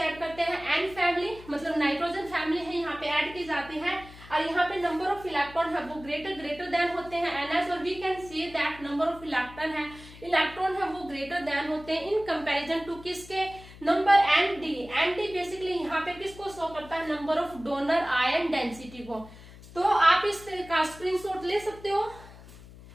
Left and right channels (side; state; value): left; noise; hum, 19 dB below the sound